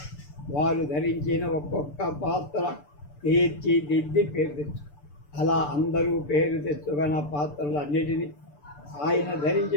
వారు ధరించిన ఒక్కొక్క పాత్ర తీర్చిదిద్ది పేరు తెచ్చు. అలా అందరూ పేరు తెచ్చుకున్న పాత్రలన్నిటినీ ఆయన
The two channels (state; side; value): late; right; 6.8 ms